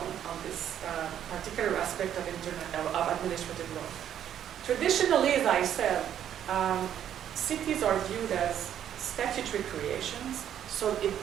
on this particular aspect of administrative law. Traditionally, as I said, cities are viewed as statutory creations. So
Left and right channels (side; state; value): left; quieter; 10.1 dB